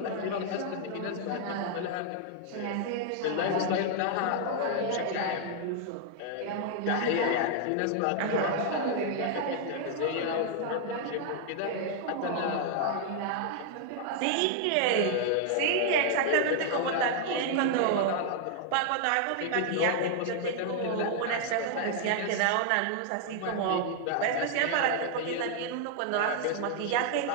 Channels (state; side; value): different; both; correlation 0.00